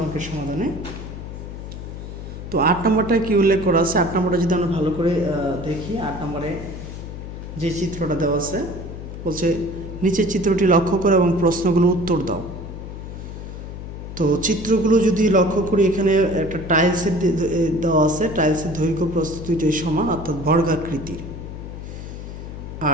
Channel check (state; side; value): noise; left; hum, 10 dB below the sound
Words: অঙ্কের সমাধানে। তো 8 নম্বরটা কি উল্লেখ করা আছে? 8 নম্বরটা যদি আমরা ভালো করে দেখি, 8 নম্বরে যে চিত্রটা দেওয়া আছে বলছে নিচের চিত্রটি লক্ষ্য করো এবং প্রশ্নগুলো উত্তর দাও। তো চিত্রগুলো যদি লক্ষ্য করি, এখানে একটা টাইলসের দেওয়া আছে, টাইলসের দৈর্ঘ্য প্রস্থ দুইটাই সমান অর্থাৎ বর্গাকৃতির।